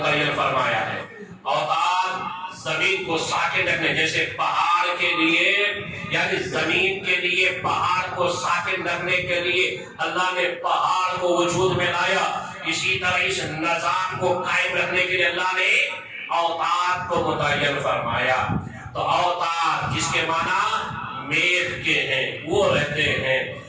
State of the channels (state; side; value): identical; both; correlation 1.00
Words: فرمایا ہے۔ اوتاد زمین کو ساکن رکھنے، جیسے پہاڑ کے لیے یعنی زمین کے لیے پہاڑ کو ساکن رکھنے کے لیے اللہ نے پہاڑ کو وجود میں لایا، اسی طرح اس نظام کو قائم رکھنے کے لیے اللہ نے اوتاد کو متعین فرمایا۔ تو اوتاد جس کے معنی میخ کے ہیں، وہ رہتے ہیں۔